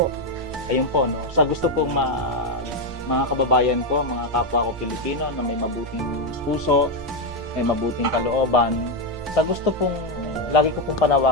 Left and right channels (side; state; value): both; normal; correlation 0.05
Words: Ayun po, no? Sa gusto pong mga kababayan ko, mga kapwa ko Pilipino na may mabuting puso, may mabuting kalooban, sa gusto pong, lagi ko pong